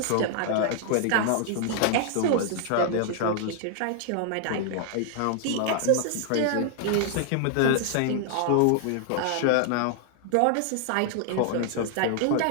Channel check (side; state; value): both; different; correlation 0.00